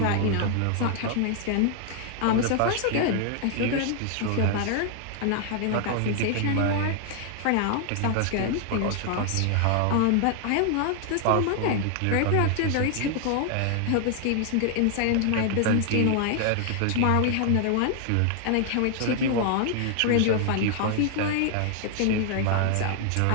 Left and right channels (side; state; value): both; different; correlation 0.00